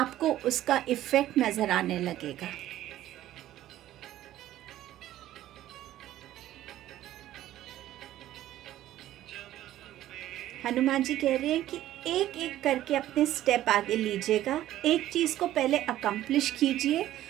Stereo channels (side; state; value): left; quieter; 13.6 dB